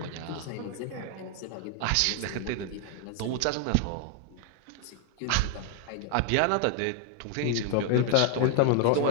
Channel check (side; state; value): both; different; correlation 0.00